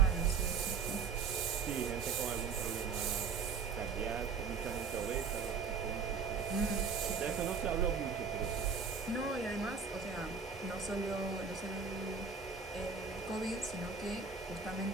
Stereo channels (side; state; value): left; quieter; 5.6 dB